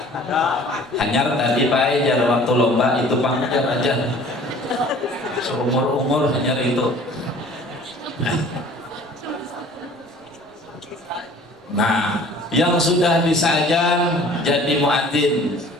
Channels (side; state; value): both; normal; correlation 0.49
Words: Hanyar tadi Pak Ejar waktu lomba itu panjang aja. Seumur-umur hanyar itu. Nah, yang sudah bisa ajan jadi muadzin